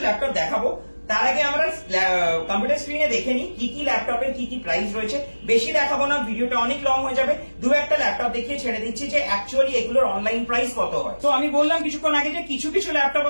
ল্যাপটপ দেখাবো, তার আগে আমরা কম্পিউটার স্ক্রিনে দেখে নিই কি কি ল্যাপটপের কি কি প্রাইস রয়েছে। বেশি দেখাবো না, ভিডিওটা অনেক লং হয়ে যাবে, দু একটা ল্যাপটপ দেখিয়ে ছেড়ে দিচ্ছি যে অ্যাকচুয়ালি এগুলোর অনলাইন প্রাইস কত হয়। তো আমি বললাম কিছুক্ষণ আগে যে কিছু কিছু ল্যাপটপ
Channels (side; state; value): both; inverted; correlation -1.00